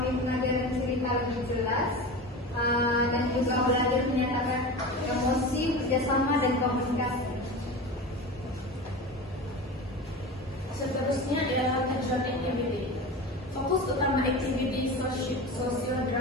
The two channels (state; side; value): normal; both; correlation 0.29